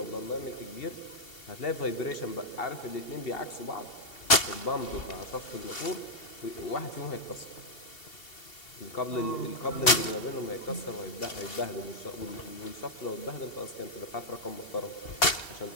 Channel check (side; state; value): right; late; 2.7 ms